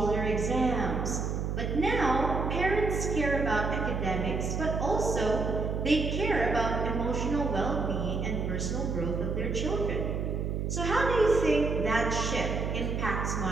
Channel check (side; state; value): right; noise; hum, 1 dB below the sound